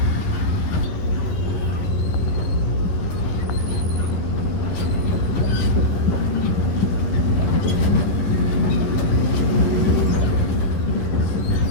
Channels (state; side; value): late; right; 11 ms